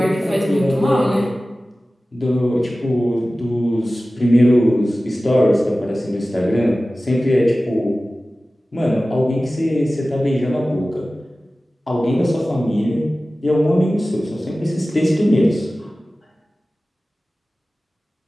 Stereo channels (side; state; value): both; normal; correlation 0.96